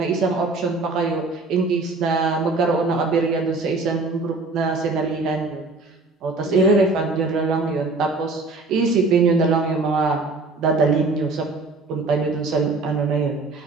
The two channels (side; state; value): left; quieter; 3.6 dB